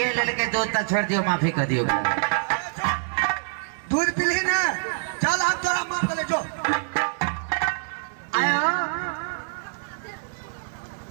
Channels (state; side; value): silent; left; digital silence